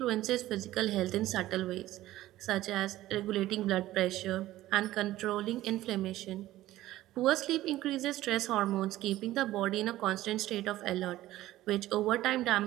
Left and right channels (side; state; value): left; quieter; 15.4 dB